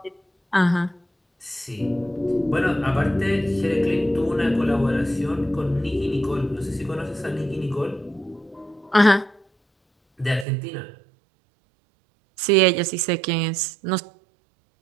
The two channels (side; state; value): left; drops out; at 10.5 s